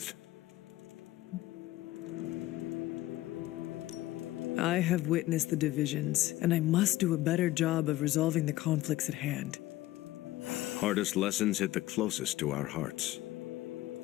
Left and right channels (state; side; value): quieter; right; 16.5 dB